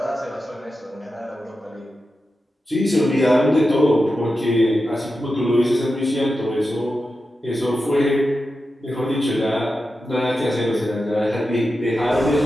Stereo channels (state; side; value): normal; both; correlation 0.91